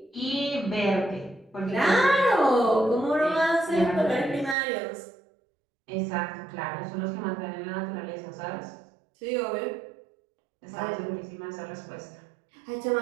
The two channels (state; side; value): drops out; left; at 4.5 s